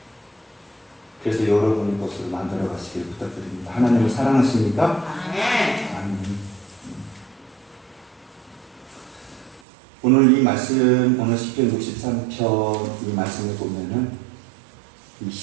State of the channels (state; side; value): drops out; left; at 9.6 s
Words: 그래서 여러분의 것으로 만들어 가시길 부탁드립니다. 하나님을 사랑하십니까? 아멘. 아멘. 오늘 이 말씀, 오늘 시편 63편 이 말씀을 보면은 이